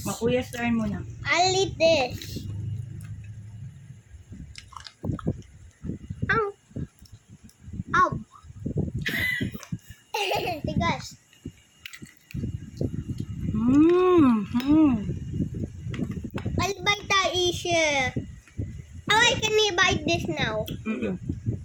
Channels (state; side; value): identical; both; correlation 1.00